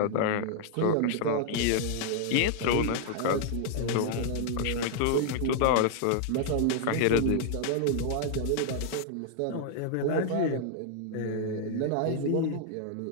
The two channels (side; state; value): both; different; correlation 0.00